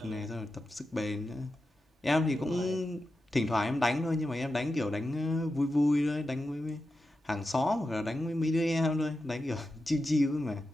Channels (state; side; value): normal; both; correlation 0.90